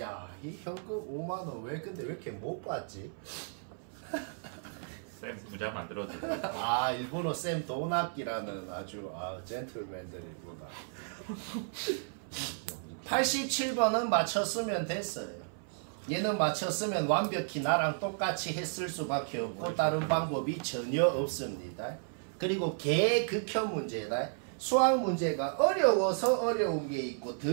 이 현금 5만원 왜 근데 왜 이렇게 못 받지? 쌤 부자 만들어도 아, 일본어 쌤 돈 아끼라는 아주 젠틀맨들이구나. 87번은 맞췄으면 됐어요. 얘는 맞췄으면 완벽히 나랑 똑같이 했을 수밖에 없고 다른 방법이 전혀 없습니다. 그리고 개극혐 문제다. 수학 문제가 어려워서 어려운 게 있고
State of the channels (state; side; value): silent; left; 55 dB below the other